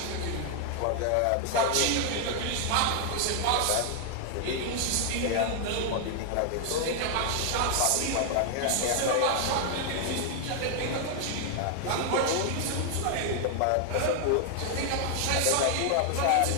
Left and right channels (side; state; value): both; different; correlation 0.00